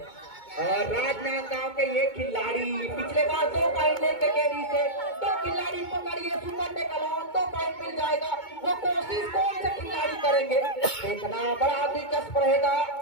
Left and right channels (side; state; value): right; late; 2.2 ms